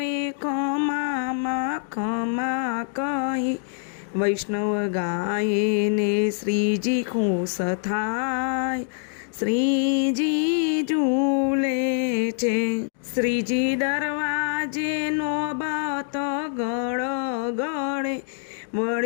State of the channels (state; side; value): silent; right; digital silence